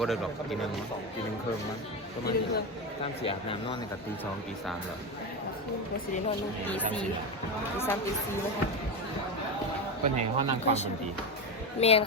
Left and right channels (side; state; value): both; normal; correlation 0.16